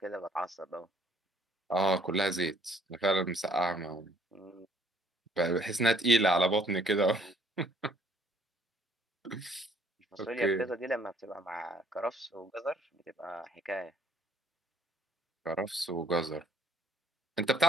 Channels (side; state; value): both; normal; correlation 0.62